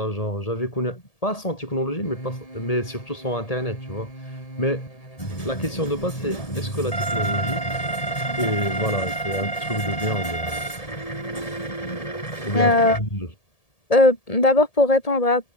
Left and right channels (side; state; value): right; late; 1.7 ms